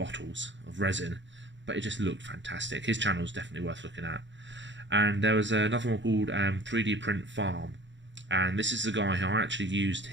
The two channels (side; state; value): left; late; 0.54 ms